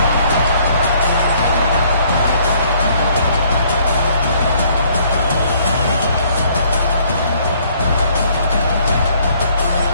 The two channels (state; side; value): inverted; both; correlation -0.62